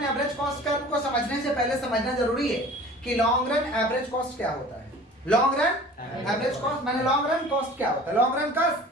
average cost curve को समझने से पहले समझना जरूरी है कि लॉन्ग रन एवरेज कॉस्ट क्या होता है। लॉन्ग रन एवरेज कॉस्ट माने लॉन्ग रन कॉस्ट क्या होता है? लॉन्ग रन कॉस्ट,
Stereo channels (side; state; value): both; normal; correlation 0.44